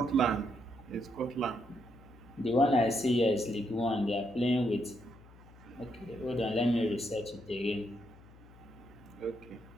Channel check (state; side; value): noise; left; hum, 22 dB below the sound